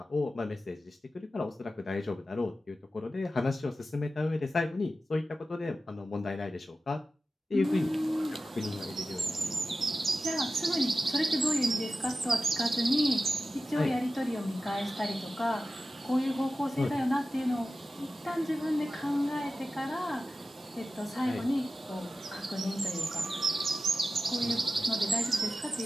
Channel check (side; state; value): both; normal; correlation 0.93